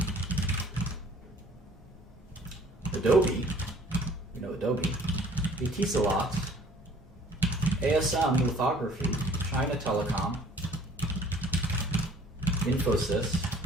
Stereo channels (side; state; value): both; normal; correlation 0.54